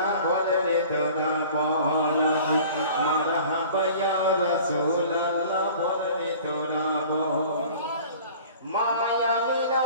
বলে তোরা বল, মারহাবা ইয়া রাসূলুল্লাহ বলে তোরা বল, মায়া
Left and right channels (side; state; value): both; inverted; correlation -0.45